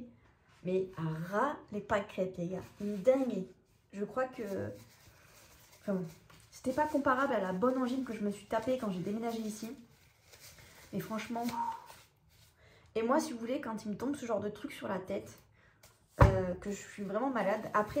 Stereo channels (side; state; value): both; identical; correlation 1.00